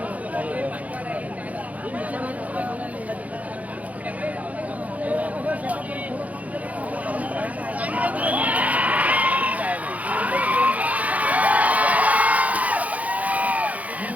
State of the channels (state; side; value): late; left; 0.071 ms